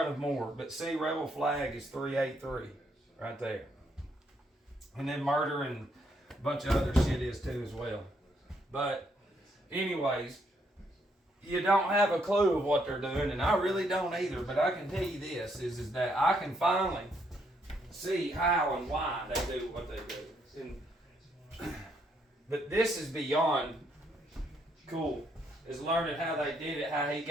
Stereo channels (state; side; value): normal; both; correlation 0.73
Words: of more. But see, rebel flag is 383. Right there. And then murder and a bunch of other shit is too as well. But anyways, you don't have a clue of what they're doing, and I really don't either. But I can tell you this, is that I can finally see how and why they do what they do. And, but this is beyond cool. Is learning how they did it, how he